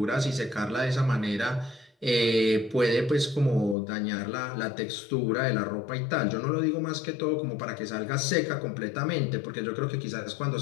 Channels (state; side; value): drops out; right; at 3.8 s